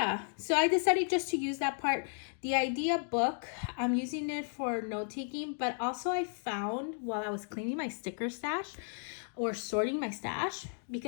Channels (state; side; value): silent; right; 55 dB below the other